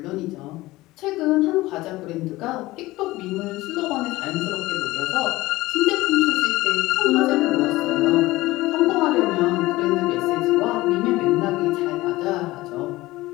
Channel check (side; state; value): right; quieter; 18.8 dB